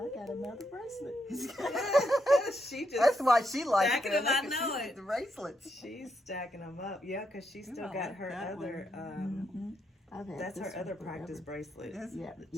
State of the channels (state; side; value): normal; both; correlation 0.80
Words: got another bracelet. She just That's why she likes stacking it. them, I Look at know she- it. The bracelets. she's stacking them up. Yeah, because she still I got like her that other. Mm-hmm. I've had That's this her one other forever. practice bracelet. Yes. Yeah, that